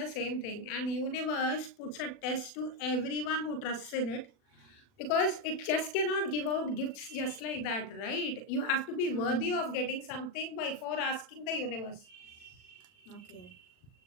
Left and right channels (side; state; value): right; late; 40 ms